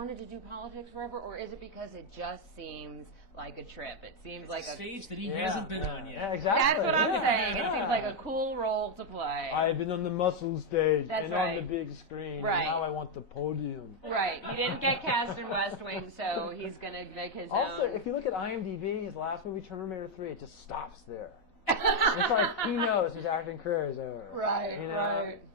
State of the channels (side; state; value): right; late; 4.0 ms